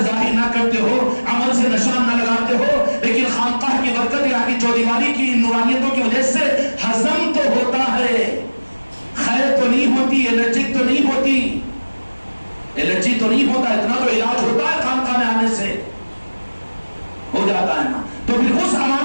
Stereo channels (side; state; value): both; inverted; correlation -1.00